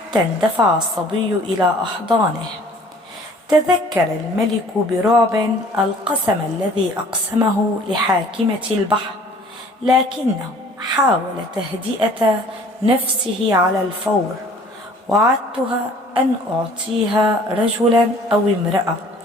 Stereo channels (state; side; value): normal; both; correlation 0.52